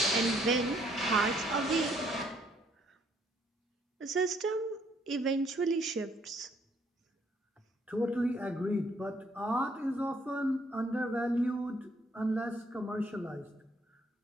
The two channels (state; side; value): normal; both; correlation 0.66